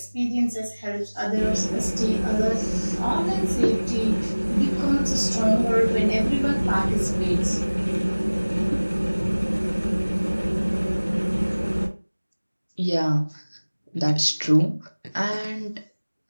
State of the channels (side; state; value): both; inverted; correlation -1.00